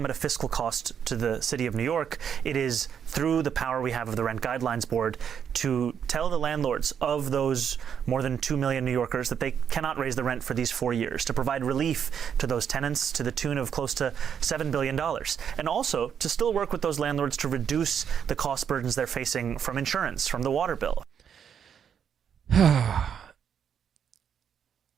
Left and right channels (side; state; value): left; quieter; 8.0 dB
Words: at a fiscal cost to the city of New York. It is through the power we have of the Rent Guidelines Board to tell the landlords of those more than 2 million New Yorkers that they cannot raise the rent for these 4 years, to provide relief to those tenants to the tune of close to $7 billion, and also to still work with those landlords to reduce the cost burdens they're facing from insurance, from the water bill.